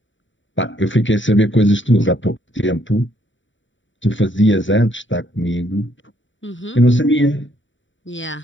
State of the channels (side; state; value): right; late; 0.55 ms